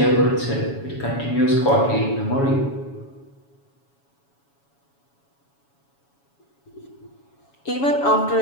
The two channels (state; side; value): late; right; 7.2 ms